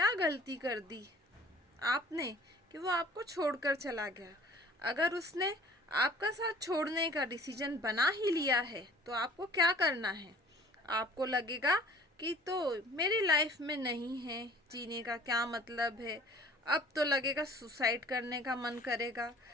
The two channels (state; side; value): normal; both; correlation 0.50